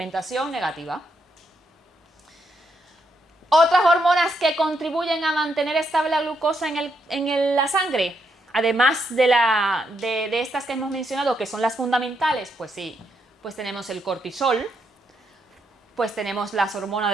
negativa. Otras hormonas que contribuyen a mantener estable la glucosa en la sangre, además de estas que hemos mencionado, que son las fundamentales, pues sí, pues tenemos el cortisol, pues tenemos las hormonas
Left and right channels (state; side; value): normal; both; correlation 0.79